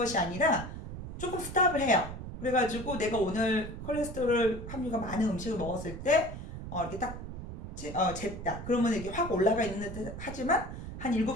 아니라 조금 스탑을 해요. 그래가지고 내가 오늘 콜레스테롤 함유가 많은 음식을 먹었을 때 이렇게 딱 쟀다. 그러면 이게 확 올라가 있는 듯 하지만 한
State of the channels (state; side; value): noise; right; rumble, 9 dB below the sound